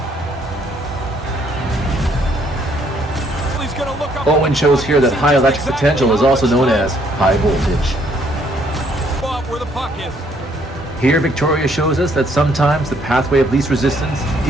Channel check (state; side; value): normal; both; correlation 0.67